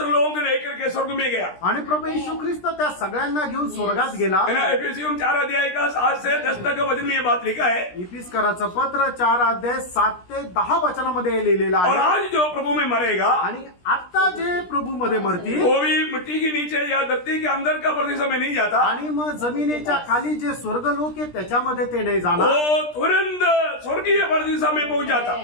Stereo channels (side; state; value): right; late; 17 ms